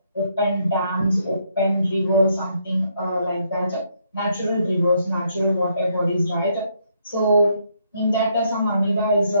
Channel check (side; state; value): both; inverted; correlation -0.73